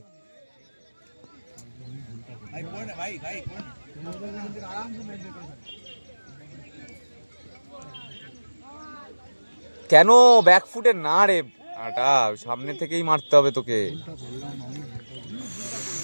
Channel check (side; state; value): both; inverted; correlation -1.00